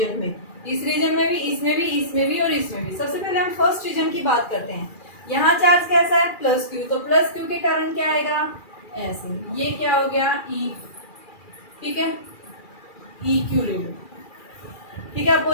में, इस रीजन में भी, इसमें भी, इसमें भी और इसमें भी। सबसे पहले हम फर्स्ट रीजन की बात करते हैं, यहाँ चार्ज कैसा है +Q, तो +Q के कारण क्या आएगा ऐसे, ये क्या हो गया E। ठीक है, EQ ले लो। ठीक है,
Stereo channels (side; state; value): right; late; 2.4 ms